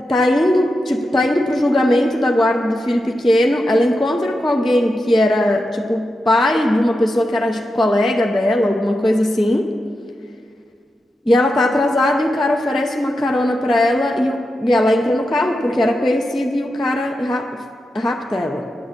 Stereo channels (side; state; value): both; normal; correlation 0.89